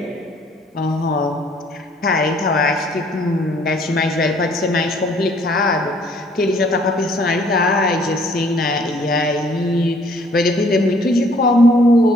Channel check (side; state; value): both; normal; correlation 0.60